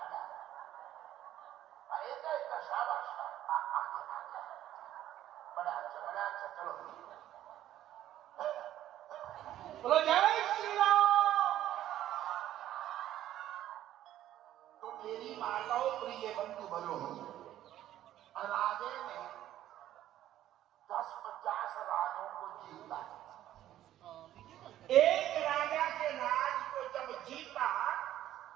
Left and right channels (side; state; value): left; quieter; 12.7 dB